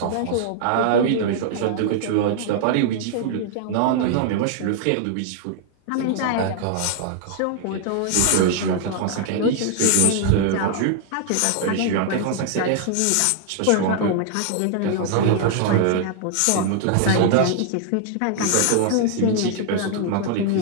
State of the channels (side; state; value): both; different; correlation -0.01